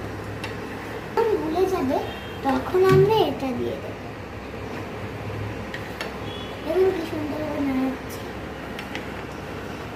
যখন গুলে যাবে তখন আমরা এটা দিয়ে দেবো। দেখুন কি সুন্দর করে নাড়াচ্ছি।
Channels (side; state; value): both; identical; correlation 1.00